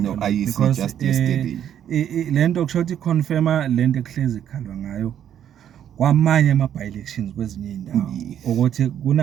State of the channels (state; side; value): quieter; left; 10.0 dB